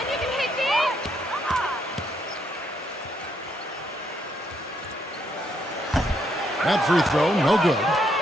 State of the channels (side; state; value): both; normal; correlation 0.74